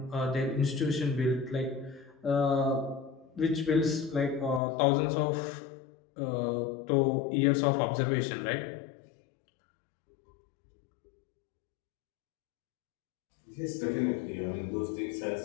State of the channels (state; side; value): drops out; right; at 4.6 s